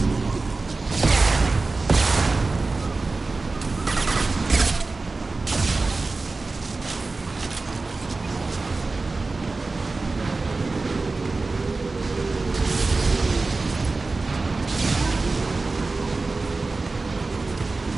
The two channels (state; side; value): quieter; left; 3.6 dB